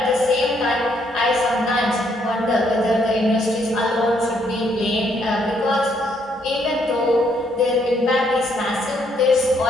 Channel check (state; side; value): normal; both; correlation 0.71